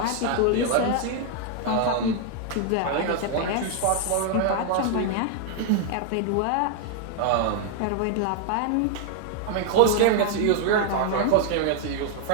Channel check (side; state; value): both; different; correlation 0.00